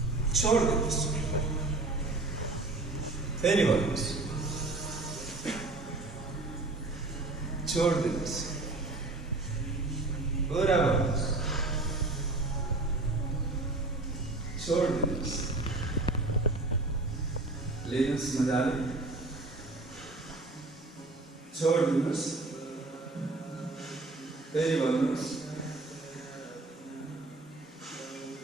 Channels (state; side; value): quieter; left; 3.1 dB